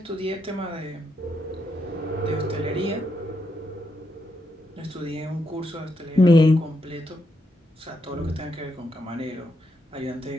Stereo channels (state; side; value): normal; both; correlation 0.81